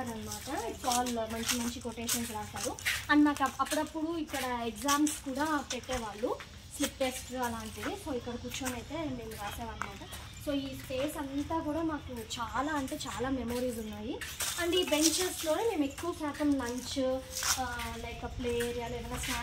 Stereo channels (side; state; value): both; identical; correlation 1.00